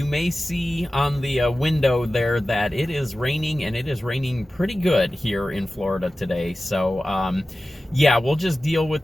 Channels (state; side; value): normal; both; correlation 0.95